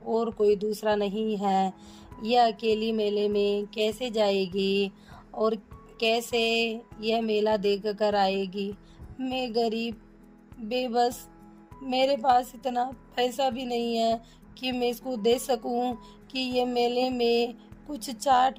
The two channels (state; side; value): identical; both; correlation 1.00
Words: कोई दूसरा नहीं है। यह अकेली मेले में कैसे जाएगी और कैसे यह मेला देख कर आएगी। मैं गरीब बेबस, मेरे पास इतना पैसा भी नहीं है कि मैं इसको दे सकूं कि ये मेले में कुछ चाट